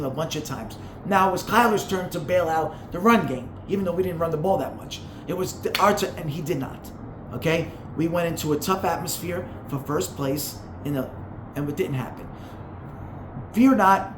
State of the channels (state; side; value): identical; both; correlation 1.00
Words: a bunch of times. Now it was Kyler's turn to bail out the run game, even though we didn't run the ball that much. It was our turn, and he did not. Okay? We went into a tough atmosphere for first place and it didn't happen. Fear